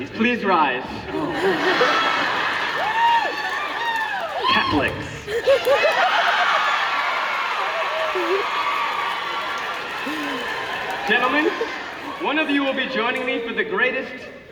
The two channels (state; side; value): identical; both; correlation 1.00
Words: stands? Please rise. Catholics. Gentlemen, one of you will be joining me for the greatest